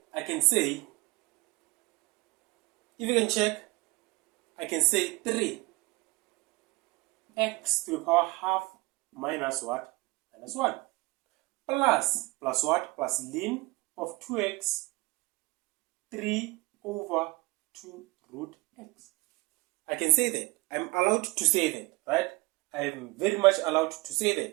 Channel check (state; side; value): quieter; left; 24.1 dB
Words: I can say, I can say 3x to the power half minus what? Minus 1. Plus what? Plus ln of 2x, 3 over 2 root x. I can say that. I'm allowed to say that, right? I am very much allowed to say